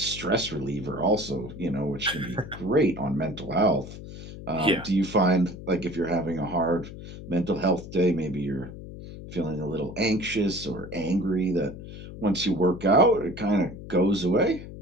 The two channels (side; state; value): left; noise; hum, 12 dB below the sound